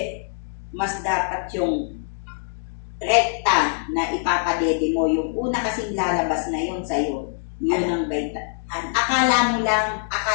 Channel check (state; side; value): silent; right; digital silence